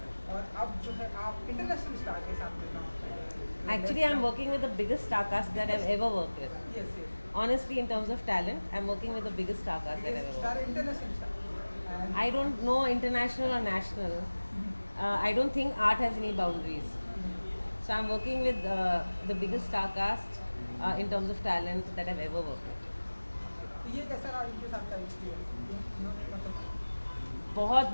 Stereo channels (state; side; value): inverted; both; correlation -1.00